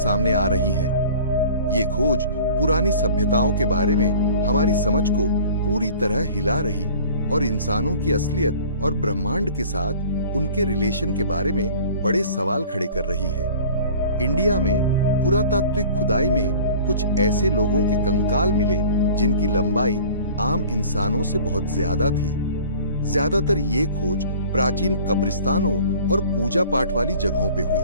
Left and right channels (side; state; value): both; inverted; correlation -0.45